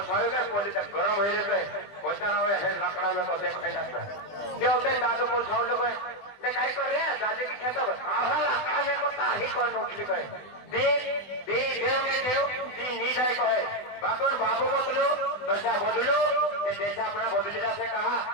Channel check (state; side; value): late; right; 20 ms